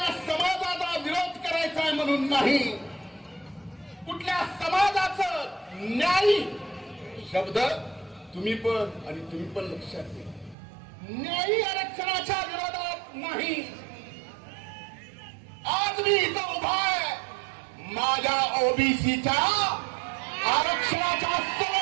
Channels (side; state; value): left; drops out; at 10.6 s